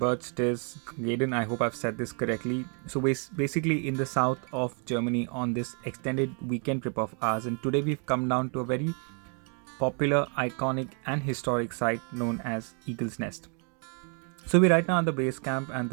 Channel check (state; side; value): quieter; left; 39.5 dB